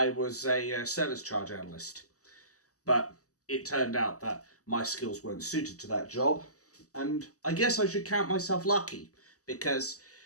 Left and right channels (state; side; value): late; right; 0.66 ms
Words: was a service charge analyst, but it turned out that my skills weren't suited to that job. And I guess I should count myself lucky, because